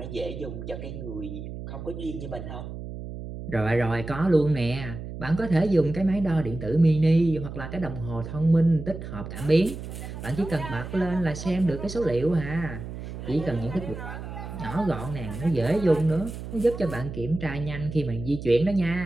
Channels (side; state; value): right; noise; hum, 9 dB below the sound